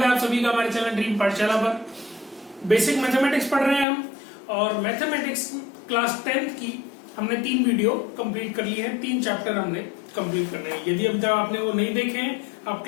है आप सभी का हमारे चैनल ड्रीम पाठशाला पर। बेसिक मैथमेटिक्स पढ़ रहे हैं हम और मैथमेटिक्स क्लास 10th की हमने 3 वीडियो कंप्लीट कर ली है। 3 चैप्टर हमने कंप्लीट करने हैं। यदि अभी तक आपने वो नहीं देखे हैं, आप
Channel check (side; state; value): right; drops out; at 3.9 s